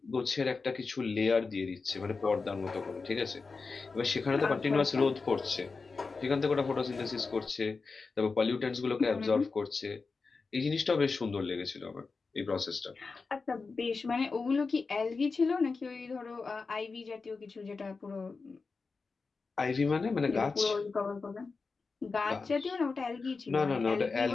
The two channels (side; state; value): right; quieter; 4.4 dB